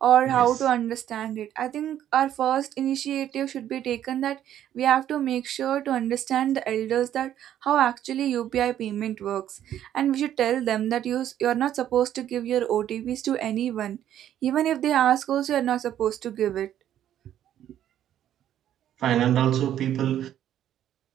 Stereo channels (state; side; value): quieter; left; 11.1 dB